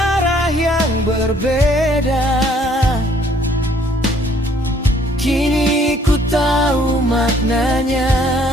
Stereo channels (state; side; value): normal; both; correlation 0.62